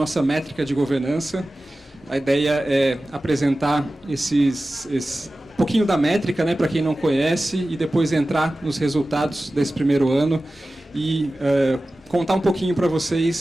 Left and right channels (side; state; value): both; normal; correlation 0.96